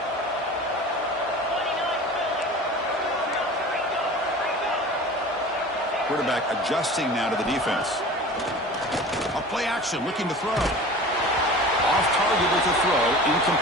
Quarterback adjusting now to the defense. A play action, looking to throw. Off target with the throw,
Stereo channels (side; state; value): both; normal; correlation 0.38